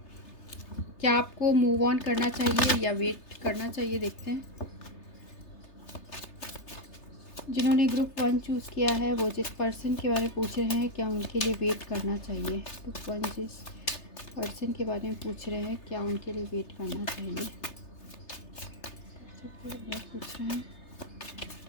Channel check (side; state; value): right; late; 3.3 ms